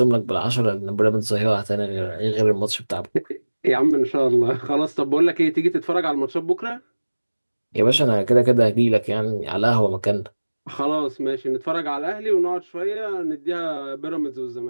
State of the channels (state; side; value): inverted; both; correlation -1.00